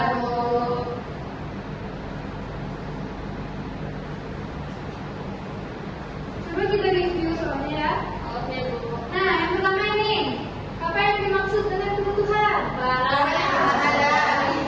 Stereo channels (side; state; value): both; identical; correlation 1.00